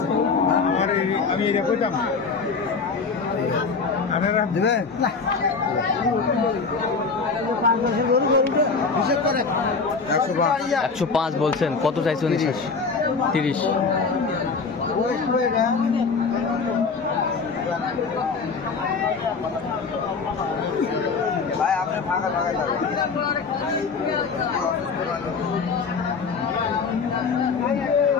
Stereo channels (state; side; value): quieter; right; 4.8 dB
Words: আমি এটা কইতাম না। আপনারা দেবে 105 বলছেন, কত চাইছেন? 30। ভাই আপনি ফাঁকা ফাঁকা